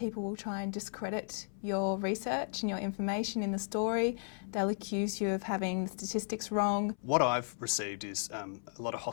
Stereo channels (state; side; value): silent; right; 55 dB below the other